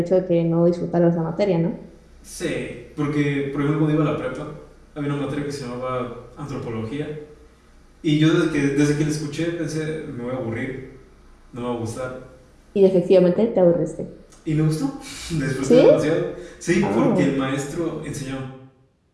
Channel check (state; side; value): identical; both; correlation 1.00